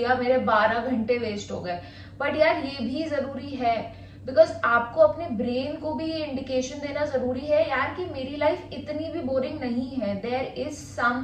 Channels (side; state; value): both; identical; correlation 1.00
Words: मेरे 12 घंटे वेस्ट हो गए, बट यार ये भी जरूरी है बिकॉज आपको अपने ब्रेन को भी ये इंडिकेशन देना जरूरी है यार कि मेरी लाइफ इतनी भी बोरिंग नहीं है. देयर इज